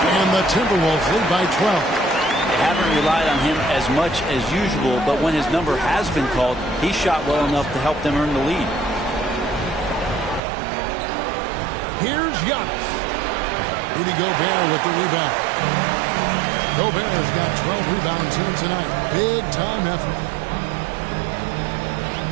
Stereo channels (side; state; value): left; drops out; at 10.4 s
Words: And the Timberwolves lead by 12. They haven't relied on him as much as usual, but when his number has been called, he shot well enough to help them earn the lead. Here's Giannis. Rudy Gobert with the rebound. Gobert's got 12 rebounds here tonight. Big time effort.